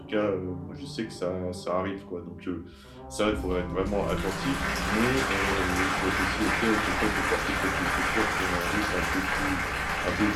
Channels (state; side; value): identical; both; correlation 1.00